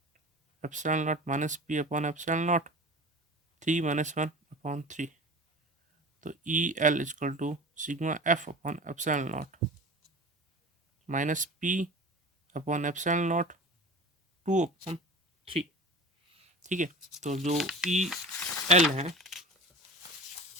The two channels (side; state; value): both; normal; correlation 0.36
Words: epsilon naught -p/ε0, 3 -1/3, तो EL equal to sigma F upon epsilon naught -p/ε0 2/3। ठीक है, तो जो EL है,